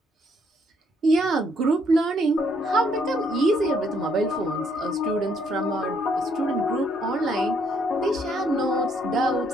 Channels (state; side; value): normal; both; correlation 0.69